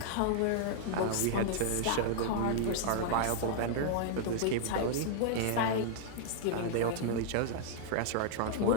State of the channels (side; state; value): both; different; correlation -0.01